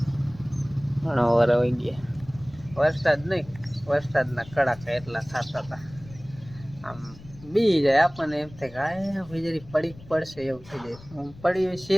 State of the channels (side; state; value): left; noise; rumble, 19 dB below the sound